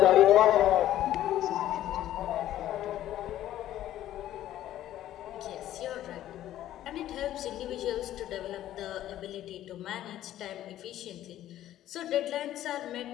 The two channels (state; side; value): quieter; right; 12.9 dB